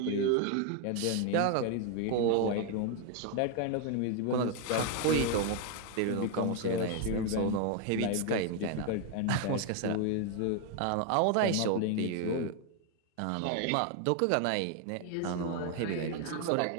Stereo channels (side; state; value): both; different; correlation 0.01